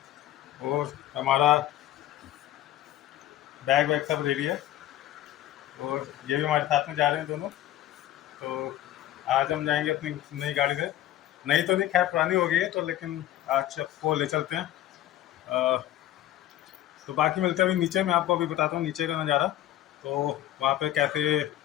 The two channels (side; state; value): right; quieter; 13.3 dB